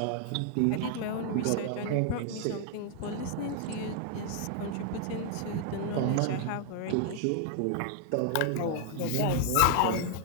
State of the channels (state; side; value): different; both; correlation 0.00